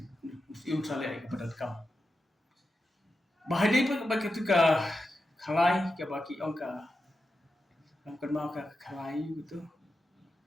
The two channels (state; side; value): normal; both; correlation 0.90